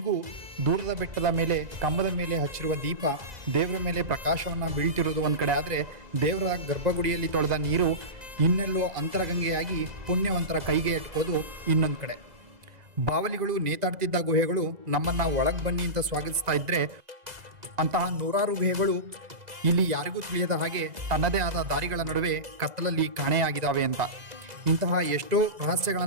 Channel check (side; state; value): left; late; 2.0 ms